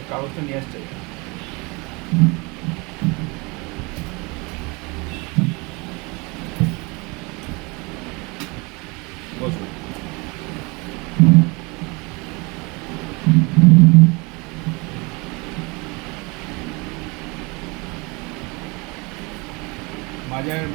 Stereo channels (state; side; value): quieter; left; 27.5 dB